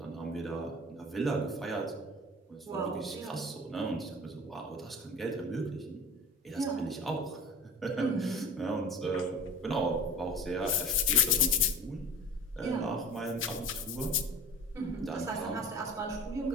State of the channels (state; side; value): normal; both; correlation 0.37